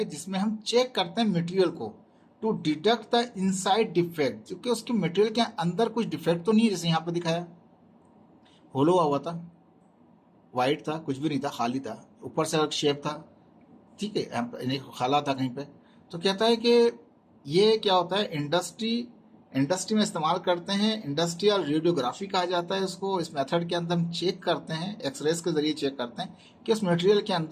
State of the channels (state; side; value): identical; both; correlation 1.00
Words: जिसमें हम चेक करते हैं मटेरियल को to detect the inside defect, क्योंकि उसके मटेरियल के अंदर कुछ डिफेक्ट तो नहीं है, जैसे यहाँ पे दिखाया होलो हुआ था, वाइट था, कुछ भी नहीं था, खाली था, ऊपर से अलग शेप था, ठीक है, खाला था कहीं पे। तो कहता है कि ये क्या होता है, इंडस्ट्री में इस्तेमाल करते हैं, इंडस्ट्रियल रेडियोग्राफी कहा जाता है इसको। इस मेथड के अंदर हम चेक करते हैं, एक्सरेज के जरिए चेक करते हैं कि उस मटेरियल के